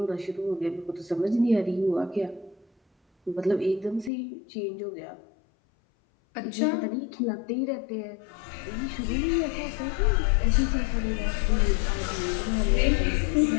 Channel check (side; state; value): right; drops out; at 4.1 s